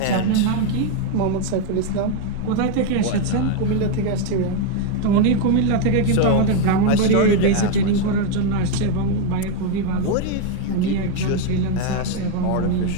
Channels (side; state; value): both; different; correlation 0.01